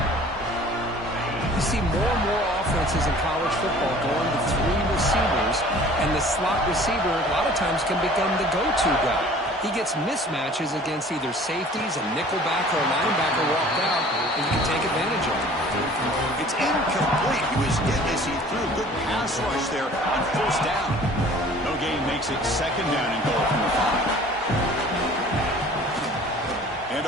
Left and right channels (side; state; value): both; normal; correlation 0.49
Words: You see more and more offenses in college football going to 3 receivers, and the slot receiver a lot of times can become the go-to guy. He gets mismatches against either safeties, a nickelback, or a linebacker walked out, and you can take advantage of it. It's incomplete. He was hit as he threw a good pass rush there on first down. No gain makes it second down and goal from the 5. And